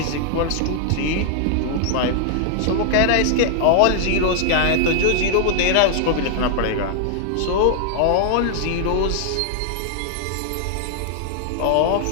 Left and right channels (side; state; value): both; different; correlation -0.01